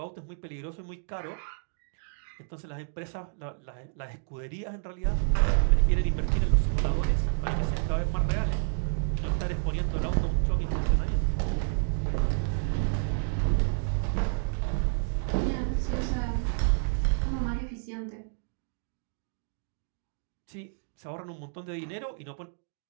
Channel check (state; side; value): silent; left; 58 dB below the other